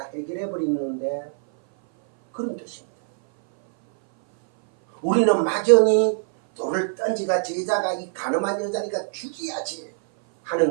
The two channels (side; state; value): left; silent; 59 dB below the other